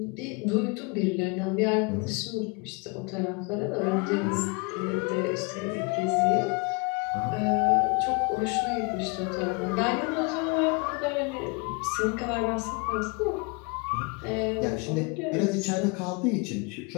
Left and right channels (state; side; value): quieter; right; 29.9 dB